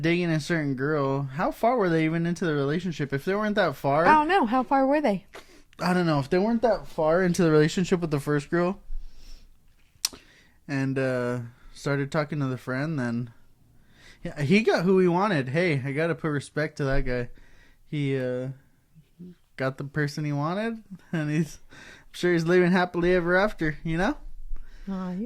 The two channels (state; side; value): identical; both; correlation 1.00